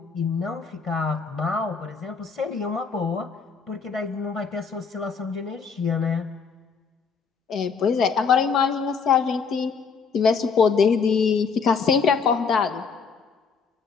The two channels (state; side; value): quieter; right; 5.6 dB